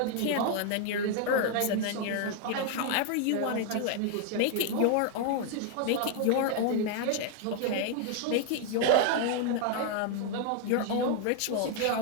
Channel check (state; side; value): different; both; correlation 0.00